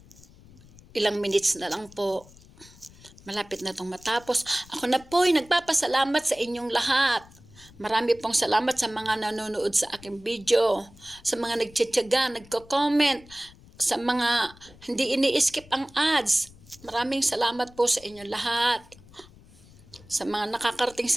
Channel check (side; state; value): left; noise; rumble, 23 dB below the sound